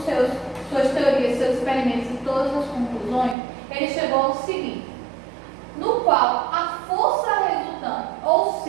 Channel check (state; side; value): drops out; left; at 3.4 s